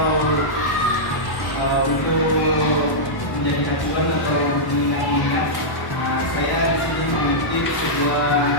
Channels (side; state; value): right; late; 1.1 ms